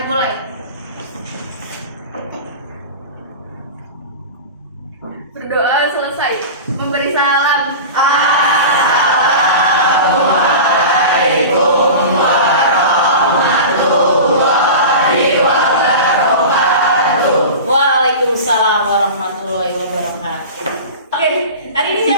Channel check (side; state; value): both; inverted; correlation -0.31